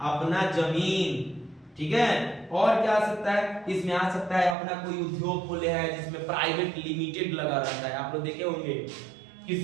अपना जमीन। ठीक है। और क्या आ सकता है? इसमें आ सकता है अपना कोई उद्योग खोले है जिसमें प्राइवेट लिमिटेड लगा रहता है। आप लोग देखे होंगे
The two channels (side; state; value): left; drops out; at 4.5 s